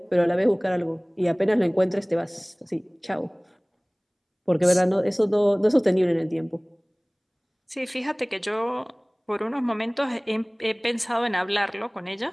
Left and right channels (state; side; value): identical; both; correlation 1.00